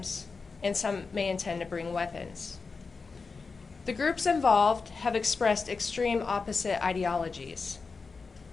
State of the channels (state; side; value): quieter; right; 4.6 dB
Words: and some may intend to bring weapons. The groups involved have expressed extreme opposite ideologies.